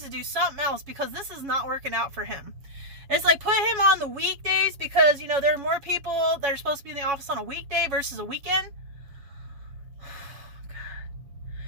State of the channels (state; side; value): late; left; 7.2 ms